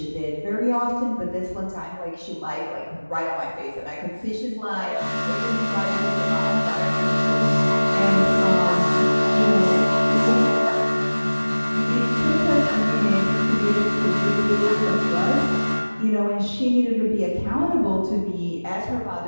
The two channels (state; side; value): inverted; both; correlation -1.00